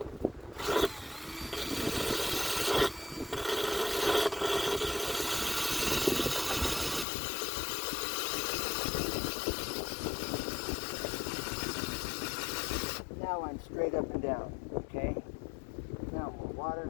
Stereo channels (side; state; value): right; drops out; at 7.1 s